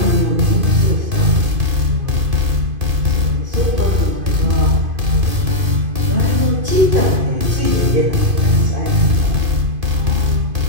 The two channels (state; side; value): late; left; 2.5 ms